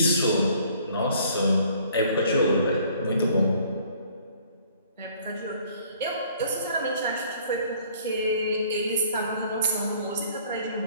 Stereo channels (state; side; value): inverted; both; correlation -0.57